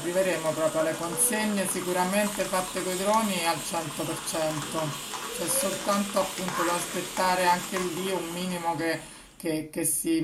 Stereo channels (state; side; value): identical; both; correlation 1.00